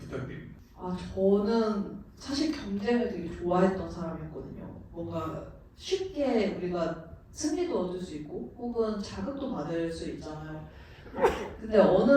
저는 사실 경쟁을 되게 좋아했던 사람이었거든요. 뭔가 쉽게 우리가 승리도 얻을 수 있고 혹은 자극도 받을 수 있잖아요. 근데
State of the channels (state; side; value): identical; both; correlation 1.00